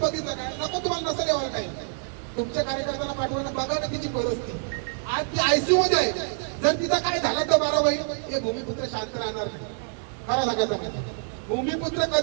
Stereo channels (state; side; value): silent; left; digital silence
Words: काय? नको तुम्हाला नसेल यावं काही, तुमच्या कार्यकर्त्याला पाठवणं बघा ना तिची परिस्थिती. आज ती आयसीयू मध्ये आहे. जर तिथं काय झालं तर बारा बाई हे भूमिपुत्र शांत राहणार नाही. खरं सांगायचं नाही, भूमिपुत्र